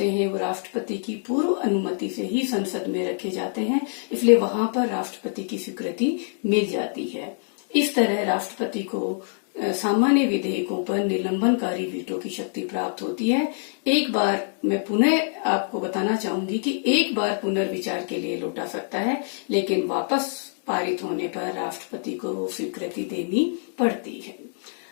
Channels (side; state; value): right; silent; digital silence